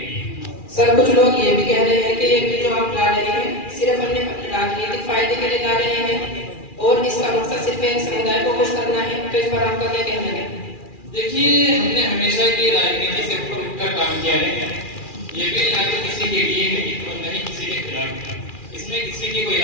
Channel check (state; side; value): late; right; 2.4 ms